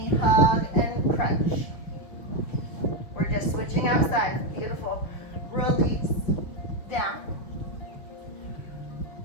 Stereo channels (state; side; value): late; right; 5.9 ms